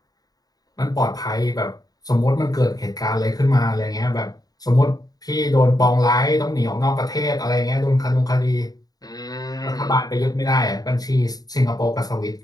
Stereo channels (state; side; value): late; right; 0.18 ms